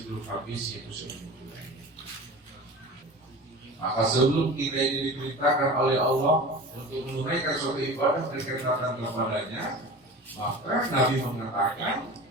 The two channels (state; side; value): normal; both; correlation 0.35